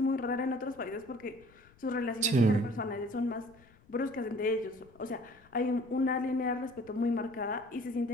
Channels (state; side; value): noise; left; rumble, 27 dB below the sound